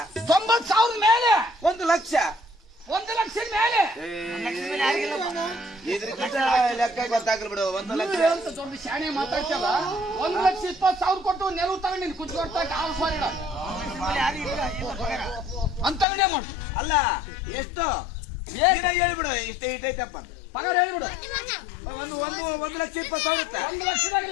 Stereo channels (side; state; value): right; drops out; at 16.1 s